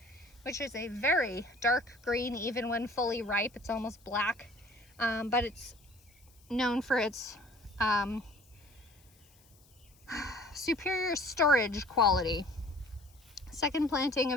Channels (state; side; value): noise; left; hiss, 29 dB below the sound